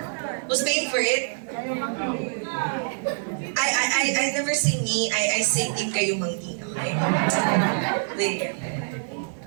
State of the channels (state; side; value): silent; left; 59 dB below the other